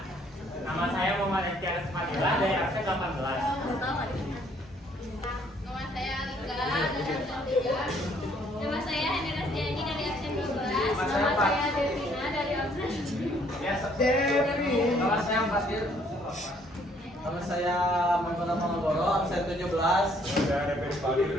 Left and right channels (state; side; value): normal; both; correlation 0.64